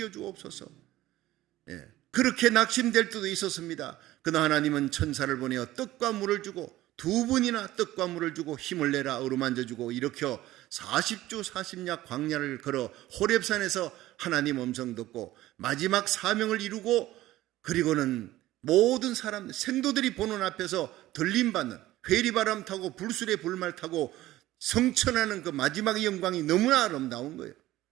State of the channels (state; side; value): quieter; left; 15.9 dB